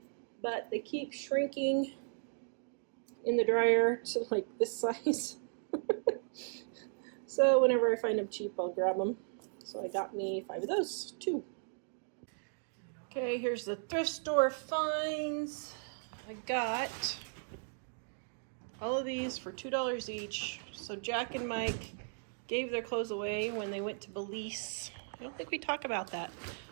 but they keep shrinking in the dryer to like this size. So whenever I find them cheap, I'll grab them. So I got me 5 of those, 2. Okay, here's the thrift store finds. I got all of these for $2 each. So Jack and Mike gave their clothes away when they went to Belize. I don't think we talk about that.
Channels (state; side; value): silent; left; digital silence